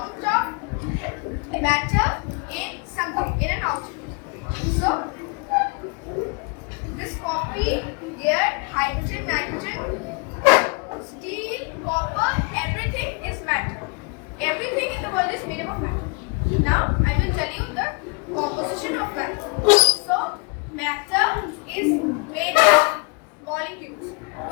of matter in something, in an object. So this copy, air, hydrogen, nitrogen, steel, copper, everything is matter. Everything in the world is made up of matter. Now I will tell you the composition of matter. So matter is made of molecules,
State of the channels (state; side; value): quieter; right; 32.3 dB